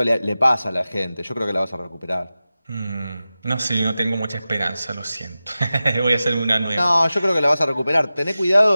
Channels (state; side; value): inverted; both; correlation -0.95